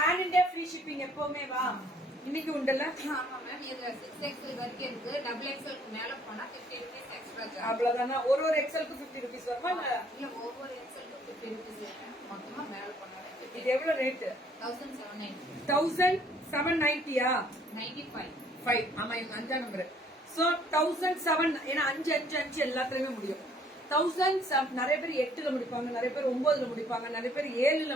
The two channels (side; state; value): both; normal; correlation 0.61